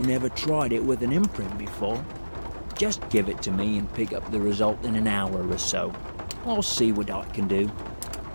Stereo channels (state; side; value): inverted; both; correlation -1.00